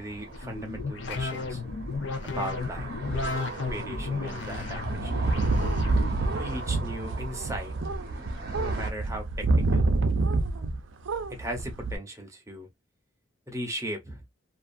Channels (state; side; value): normal; both; correlation 0.68